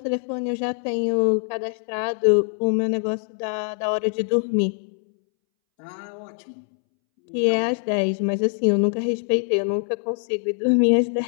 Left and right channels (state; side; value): silent; right; 63 dB below the other